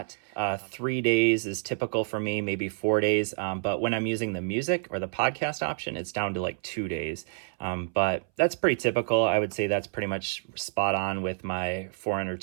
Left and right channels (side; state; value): left; silent; 59 dB below the other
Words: 3 days is typical for me, maybe 4 days. But when I'm using the music or the podcast option, it's down to like 2 days. But that's pretty typical. I would say that's pretty much spot on with my 400